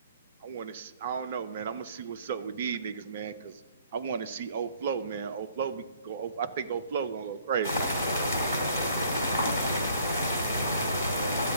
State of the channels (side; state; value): both; inverted; correlation -0.59